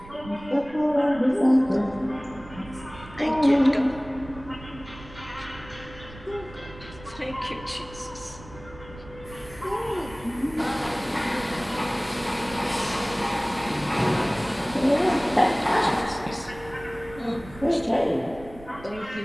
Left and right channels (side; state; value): right; noise; rumble, 17 dB below the sound